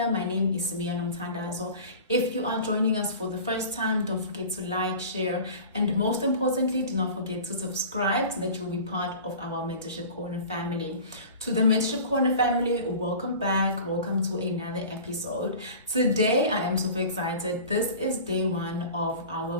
My name is Samia Nomthandazo. If you are joining us for the first time, don't forget to like, share, and most importantly, do not forget to subscribe so that you'll be part of our Mentorship Corner family. To the Mentorship Corner family, welcome back. Welcome to another episode. Today, I am super excited. This is day one of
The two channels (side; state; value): both; inverted; correlation -0.39